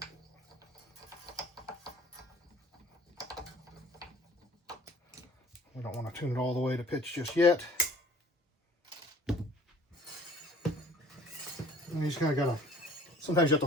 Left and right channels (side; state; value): both; normal; correlation 0.51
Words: We don't want to tune it all the way to pitch just yet. And you just kind of gotta, sometimes you have